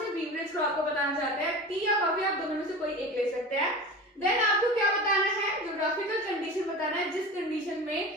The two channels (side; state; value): both; normal; correlation 0.32